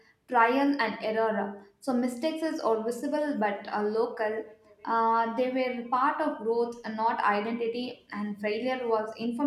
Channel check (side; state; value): both; identical; correlation 1.00